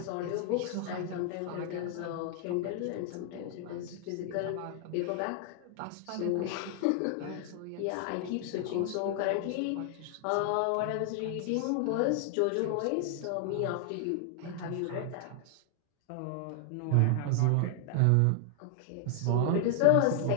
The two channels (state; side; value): different; both; correlation 0.00